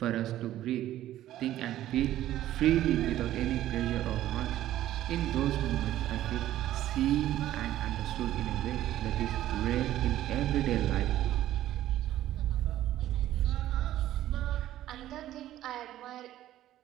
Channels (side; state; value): left; quieter; 13.4 dB